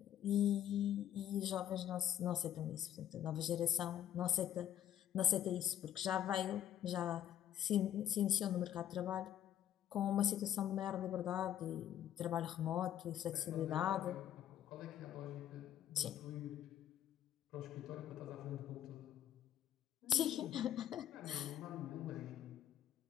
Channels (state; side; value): quieter; right; 10.8 dB